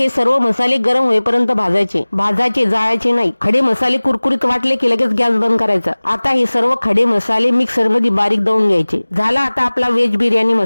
सर्व मसाले गरम होईपर्यंत भाजायचे, जाळायचे नाही। खडे मसाले कुरकुरीत वाटले की लगेच गॅस बंद करायचा। आता हे सर्व खडे मसाले मिक्सर मध्ये बारीक दळून घ्यायचे। झाला आता आपला व्हेज बिर्याणी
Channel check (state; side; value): inverted; both; correlation -1.00